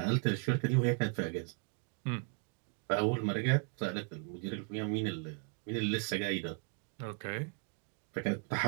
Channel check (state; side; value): quieter; left; 38.0 dB